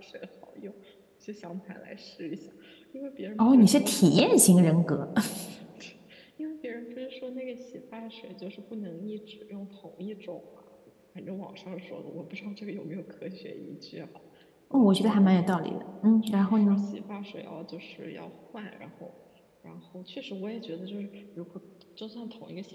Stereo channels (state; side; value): identical; both; correlation 1.00